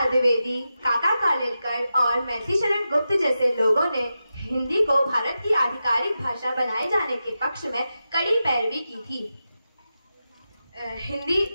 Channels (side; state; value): both; inverted; correlation -0.90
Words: द्विवेदी, काका कालेलकर और मैथिलीशरण गुप्त जैसे लोगों ने हिंदी को भारत की आधिकारिक भाषा बनाए जाने के पक्ष में कड़ी पैरवी की थी।